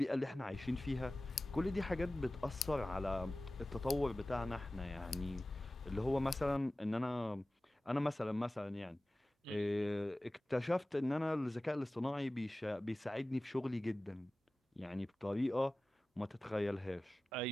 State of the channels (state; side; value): normal; both; correlation 0.97